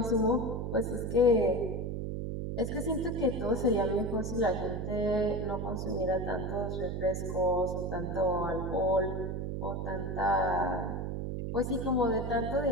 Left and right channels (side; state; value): right; noise; hum, 3 dB below the sound